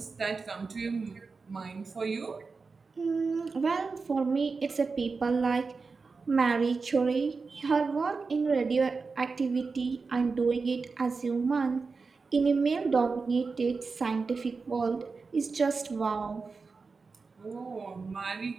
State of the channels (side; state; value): left; quieter; 4.5 dB